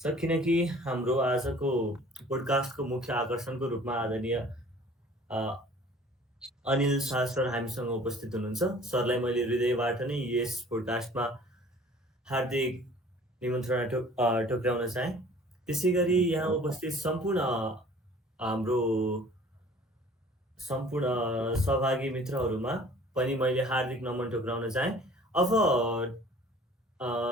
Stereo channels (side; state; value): both; normal; correlation 0.50